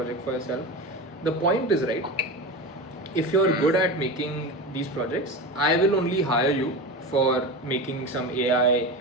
for yourself. The point is right. If you're good at making these projects, I will only hire you for making some AI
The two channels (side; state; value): both; normal; correlation 0.24